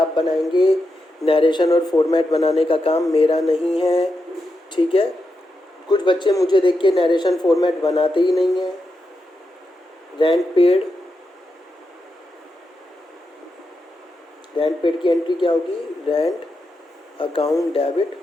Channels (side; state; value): both; normal; correlation 0.86